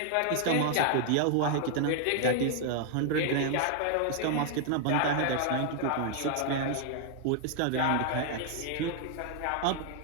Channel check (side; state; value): both; different; correlation 0.00